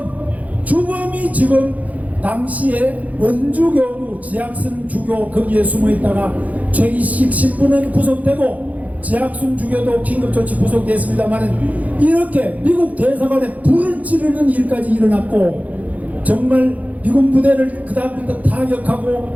주범이 지금 당시에 원주교구 지학순 주교 거기에 숨어 있다가 최기식 신부는 구속되고 지학순 주교도 긴급조치 구속됐습니다만, 이렇게 미국 대사관에 불을 지르는 일까지 일어났고, 정말 미군 부대를 그 다음부터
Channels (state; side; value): late; left; 0.074 ms